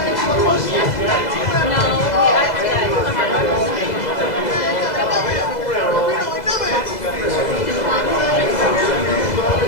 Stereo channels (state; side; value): late; right; 2.0 ms